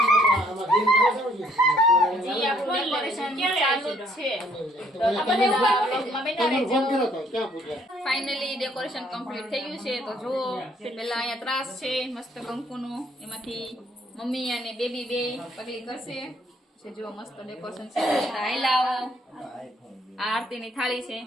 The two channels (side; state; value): both; normal; correlation 0.65